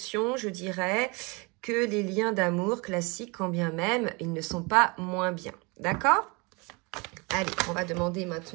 je dirais, que les liens d'amour classiques, quand bien même ils ne sont pas moins bien. D'accord ? Allez, on va demander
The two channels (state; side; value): quieter; left; 28.5 dB